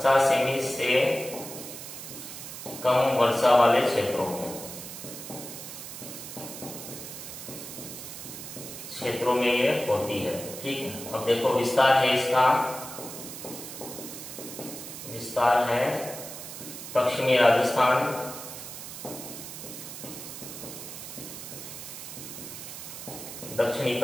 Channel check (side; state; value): right; noise; hiss, 10 dB below the sound